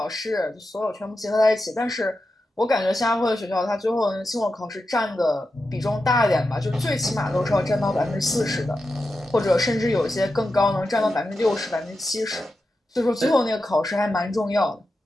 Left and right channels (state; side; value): normal; both; correlation 0.90